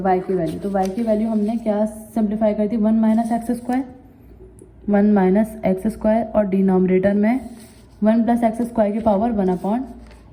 वाई की वैल्यू, तो वाई की वैल्यू हमने क्या सिंप्लीफाई कर दी, 1 minus x square, 1 minus x square, और डिनोमिनेटर में 1 प्लस एक्स स्क्वायर की पावर 1 अपॉन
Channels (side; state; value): both; identical; correlation 1.00